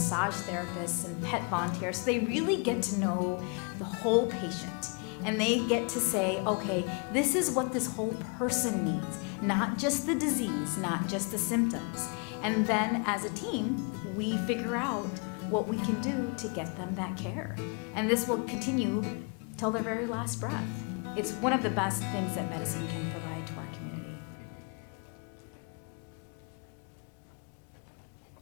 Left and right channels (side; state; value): right; quieter; 35.3 dB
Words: therapists and pet volunteers. So they really get to know the whole patient. And they get to say, okay, this is what this whole person needs, not just the disease, not just the symptoms. And then as a team, we figure out what we can do to get them that care. And this will continue till their very last breath. It's one of the best things that medicine can provide to our community.